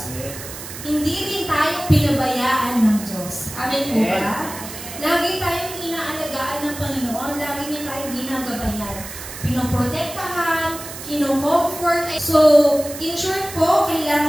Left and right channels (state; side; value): noise; right; hiss, 11 dB below the sound